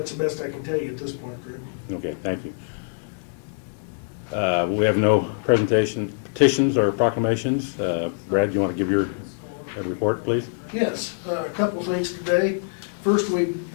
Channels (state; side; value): silent; right; digital silence